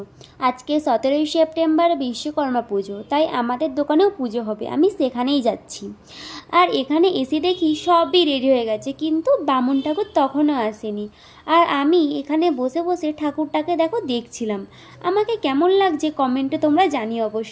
आज के 17 सेप्टेम्बर विश्वकर्मा पुजो, ताई आमादेर दोकानेও पुजो होबे। आमी सेखानेই যাচ্ছি। আর এখানে এসে দেখি সবই রেডি হয়ে গেছে, কিন্তু বামুন ঠাকুর তখনও আসেনি। আর আমি এখানে বসে বসে ঠাকুরটাকে দেখছিলাম। আমাকে কেমন লাগছে কমেন্টে তোমরা জানিও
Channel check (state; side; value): identical; both; correlation 1.00